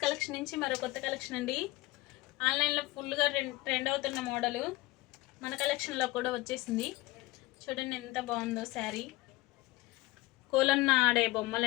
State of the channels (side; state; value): right; quieter; 19.7 dB